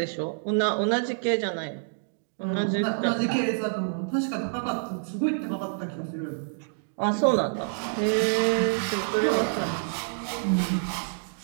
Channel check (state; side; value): silent; left; digital silence